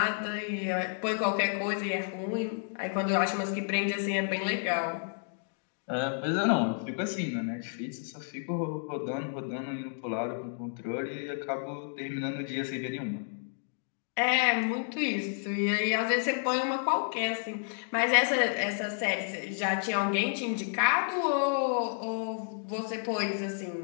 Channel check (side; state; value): right; silent; digital silence